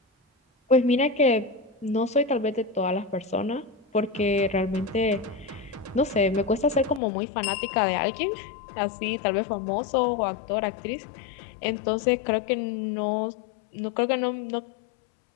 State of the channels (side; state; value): right; drops out; at 7.0 s